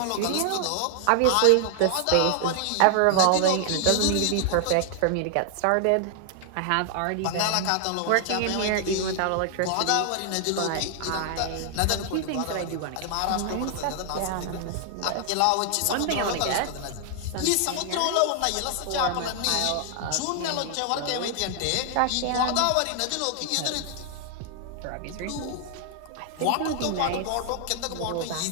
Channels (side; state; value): both; different; correlation 0.00